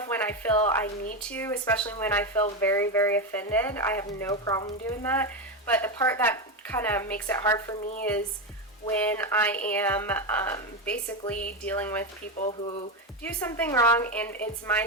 when I feel I need to, especially when I feel very, very offended. I have no problem doing that. But the part that kind of makes it hard for me is when I am basically dealing with people who do something wrong, and it's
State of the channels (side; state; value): both; normal; correlation 0.12